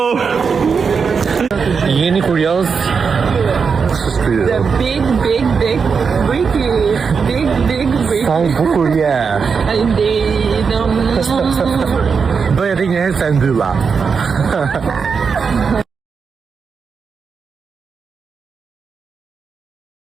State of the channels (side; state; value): left; quieter; 5.7 dB